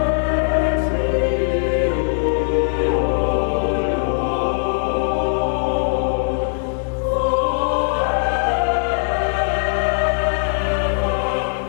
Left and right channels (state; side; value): silent; right; 62 dB below the other